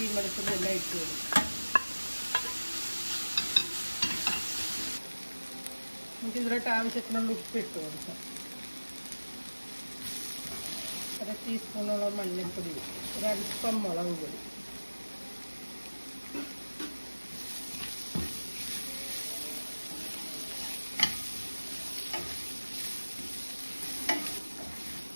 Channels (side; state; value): both; inverted; correlation -1.00